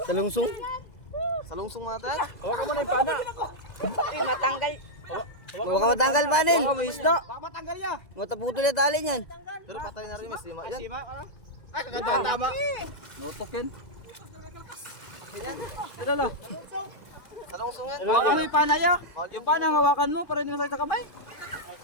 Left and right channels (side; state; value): right; late; 2.0 ms